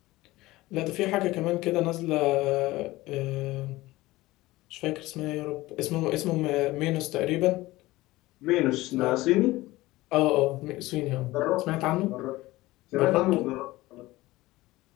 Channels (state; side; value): quieter; right; 18.7 dB